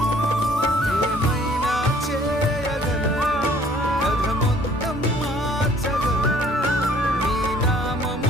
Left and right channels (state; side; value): normal; both; correlation 0.57